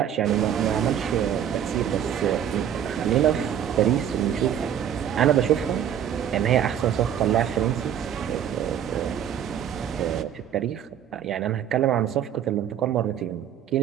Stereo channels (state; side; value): quieter; left; 9.7 dB